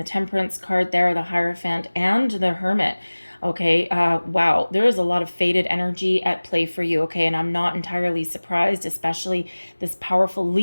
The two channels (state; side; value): inverted; both; correlation -1.00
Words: Temperance card there, the Hierophant, and the Hermit. Okay, wow, there is a lot of faded energy at play for you, okay, and I'm not entirely surprised, especially this powerful